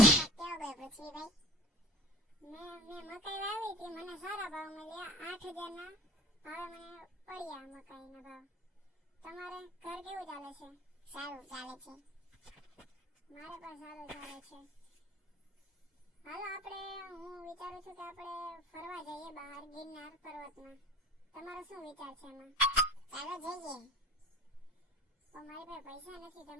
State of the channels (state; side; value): normal; both; correlation 0.44